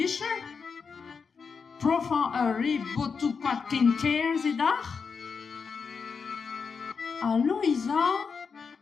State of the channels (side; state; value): right; quieter; 5.5 dB